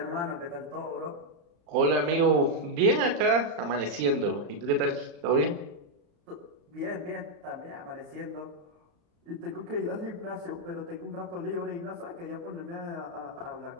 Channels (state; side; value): late; left; 35 ms